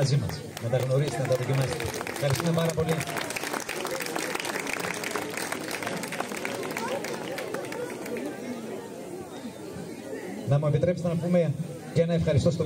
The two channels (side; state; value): both; identical; correlation 1.00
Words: μας. Να τα γνωρίσετε, να τα δοκιμάσετε. Ευχαριστούμε πάρα πολύ. Να μου επιτρέψετε να πούμε και ένα ευχαριστώ στο